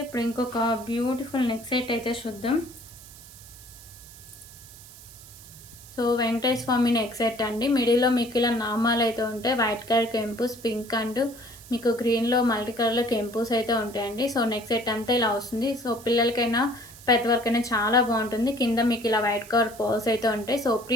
ఇప్పుడు ఇంకొక బ్యూటిఫుల్ నెక్ సెట్ అయితే చూద్దాం. సో వెంకటేశ్వర స్వామి నెక్ సెట్ అండి. మిడిల్లో మీకు ఇలా నామాలు అయితే ఉంటాయి, వైట్ కలర్ కెంపుస్, పింక్ అండ్ మీకు గ్రీన్లో మల్టీ కలర్లో కెంపుస్ అయితే ఉంటాయండి. సో నెక్ సెట్ అంతా ఇలా వస్తుంది. సో పిల్లలకైనా పెద్దవారికైనా చాలా బాగుంటుంది. కింద మీకు ఇలా వైట్ కలర్ పర్ల్స్ అయితే ఉంటాయి. So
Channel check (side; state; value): right; noise; hiss, 19 dB below the sound